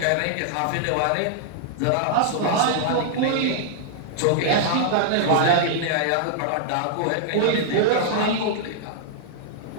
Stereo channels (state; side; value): different; both; correlation -0.01